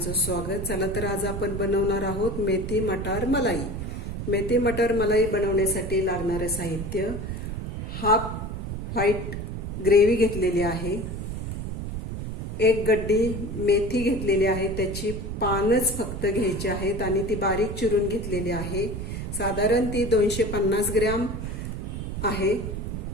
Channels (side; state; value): right; noise; rumble, 5 dB below the sound